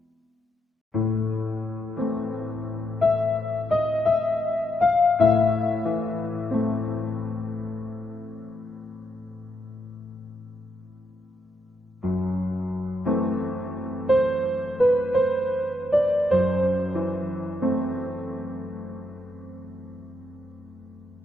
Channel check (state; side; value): normal; both; correlation 0.80